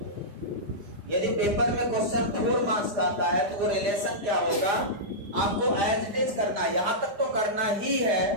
यदि पेपर में क्वेश्चन 4 मार्क्स का आता है, तो वो रिलेशन क्या होगा, आपको एज इट इज करना है, यहां तक तो करना ही है,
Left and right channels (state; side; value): late; left; 5.0 ms